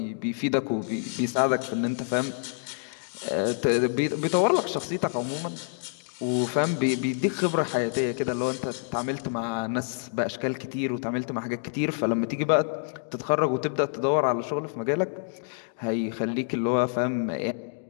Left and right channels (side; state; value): right; silent; digital silence